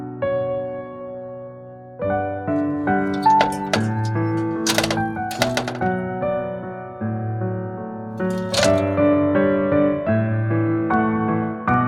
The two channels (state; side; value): identical; both; correlation 1.00